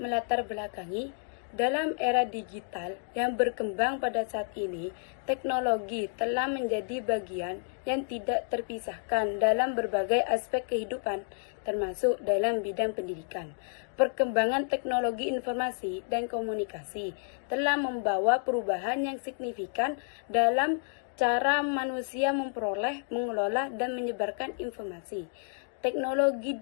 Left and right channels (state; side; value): silent; right; 58 dB below the other